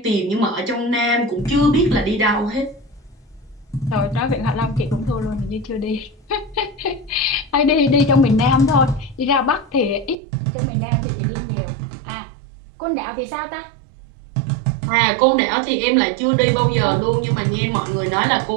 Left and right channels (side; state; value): left; drops out; at 10.2 s